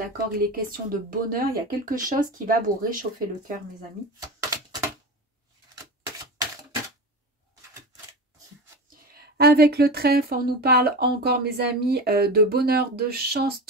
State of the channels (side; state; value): both; normal; correlation 0.27